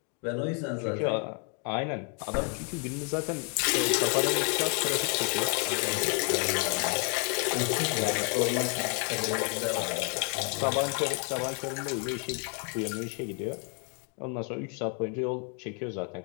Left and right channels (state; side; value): quieter; right; 39.3 dB